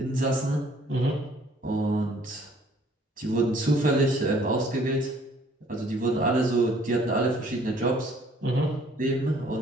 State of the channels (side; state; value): both; normal; correlation 0.59